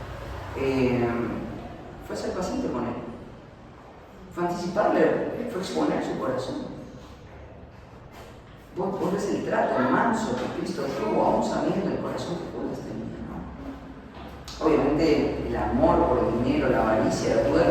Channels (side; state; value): both; identical; correlation 1.00